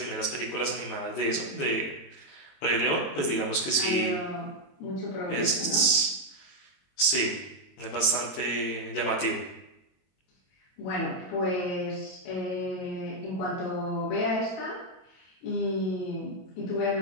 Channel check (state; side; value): late; right; 22 ms